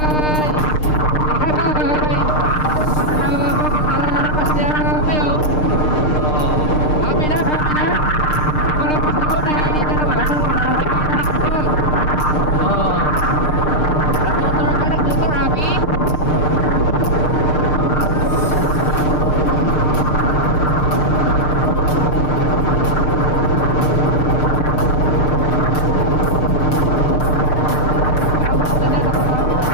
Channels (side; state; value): right; late; 6.6 ms